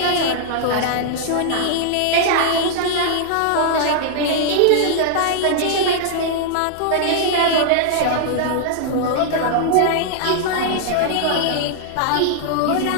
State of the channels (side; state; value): both; different; correlation -0.01